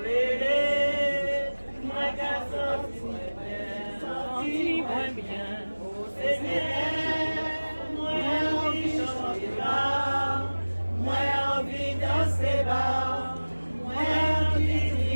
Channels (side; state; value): both; inverted; correlation -1.00